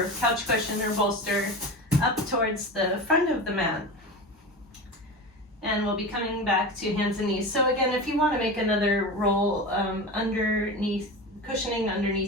couch cushion or bolster up towards the front of the mat. And we'll be coming back to hands and knees. So again, if you want to make another roll underneath, cushioning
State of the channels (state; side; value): normal; both; correlation 0.27